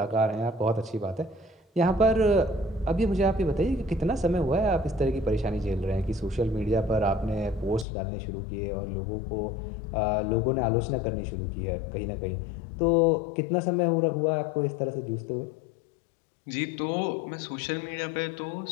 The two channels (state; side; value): drops out; right; at 7.9 s